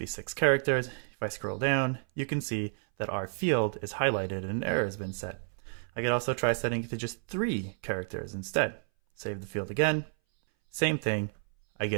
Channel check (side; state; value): left; silent; 57 dB below the other